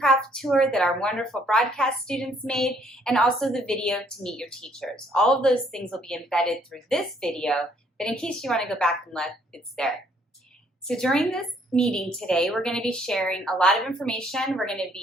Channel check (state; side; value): normal; both; correlation 0.65